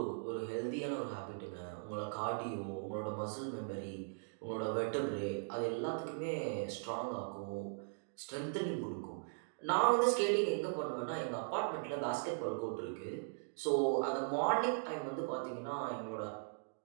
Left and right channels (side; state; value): left; silent; digital silence